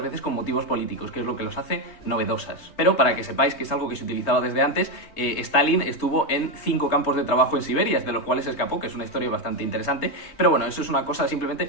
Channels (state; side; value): late; right; 3.2 ms